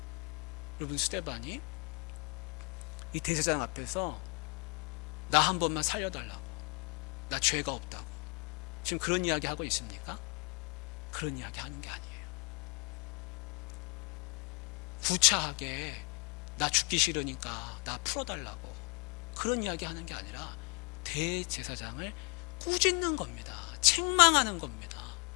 여러분, 스데반이 이 대제사장 앞에서 나 한 번만 살려달라고, 나 죄가 없다고 지금 그런 이야기 하고 있습니까? 그런 이야기 하는 게 아니에요. 구차하게 나 죽기 싫으니까 나 풀어달라고 그런 이야기 하는 게 아니라 대제사장을 꾸짖는 겁니다. 책망하는 겁니다.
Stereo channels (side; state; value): right; quieter; 33.5 dB